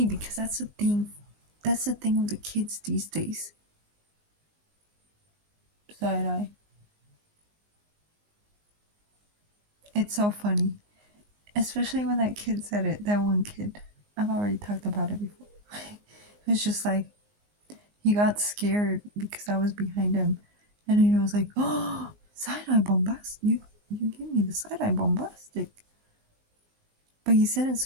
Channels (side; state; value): left; late; 19 ms